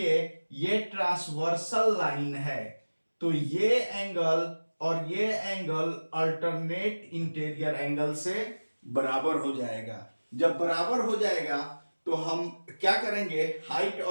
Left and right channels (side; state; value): both; inverted; correlation -1.00